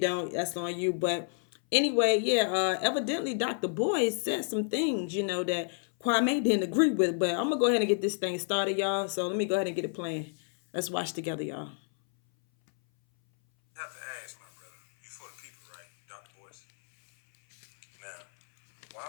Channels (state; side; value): silent; right; 58 dB below the other